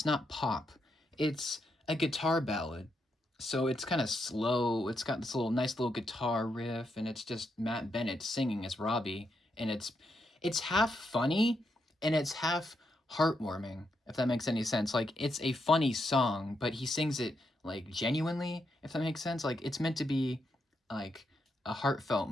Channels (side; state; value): both; normal; correlation 0.81